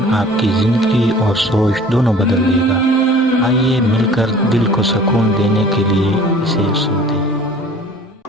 आपकी ज़िंदगी और सोच दोनों बदल देगा। आइए मिलकर दिल को सुकून देने के लिए इसे सुनते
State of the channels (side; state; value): both; normal; correlation 0.47